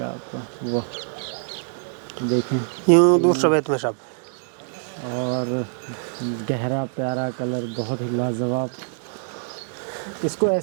आपका। वाह देखें, यूँ दूसरा बेत में साहब। और गहरा प्यारा कलर, बहुत ही लाजवाब। इसको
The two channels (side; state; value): left; silent; digital silence